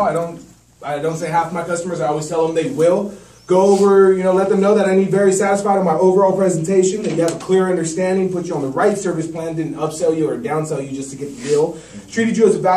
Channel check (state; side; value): identical; both; correlation 1.00